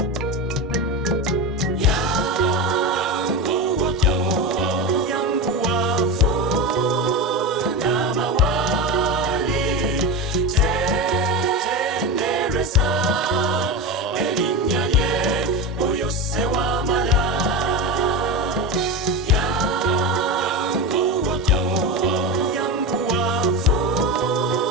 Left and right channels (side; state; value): both; normal; correlation 0.20